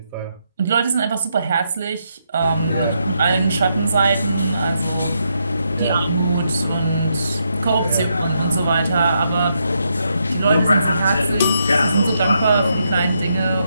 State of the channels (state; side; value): inverted; both; correlation -0.80